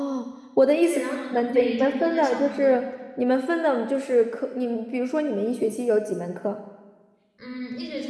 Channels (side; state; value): both; identical; correlation 1.00